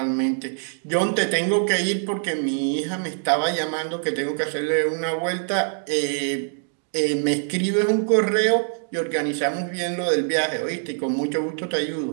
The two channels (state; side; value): silent; left; 63 dB below the other